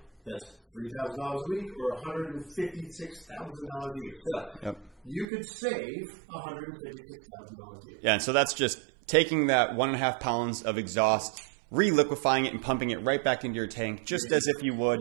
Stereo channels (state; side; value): drops out; left; at 5.2 s